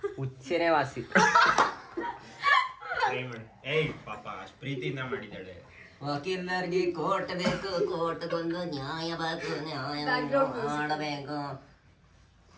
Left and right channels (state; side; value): identical; both; correlation 1.00